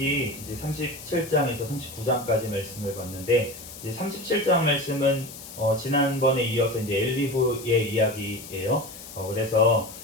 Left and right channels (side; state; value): left; noise; hiss, 14 dB below the sound